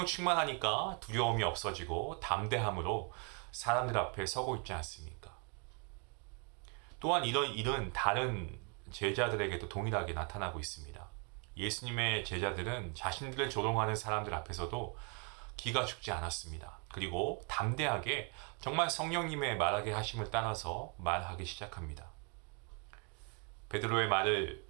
충만하니까 두려움이 없어지고 담대함으로 사람들 앞에 서고 있지 않습니까? 또한 이런 일은 다른 제자들에게도 동일하게 나타나고 있습니다. 예수님의 제자들은 자신들을 조롱하는 사람들 앞에서도 기가 죽지 않았습니다. 그리고 담대하게 정말 성령님의 말하게 하심을 따라서 말하기 시작합니다. 베드로의 말을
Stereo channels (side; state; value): left; quieter; 36.6 dB